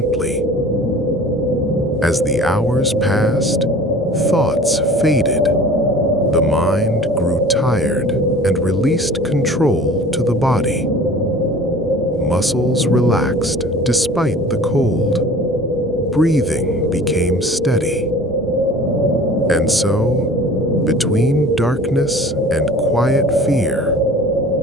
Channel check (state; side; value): normal; both; correlation 0.44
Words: As the hours passed, thoughts faded. The mind grew tired and released control to the body. Muscles relaxed despite the cold. Breathing became steady. And so, between darkness and quiet fear,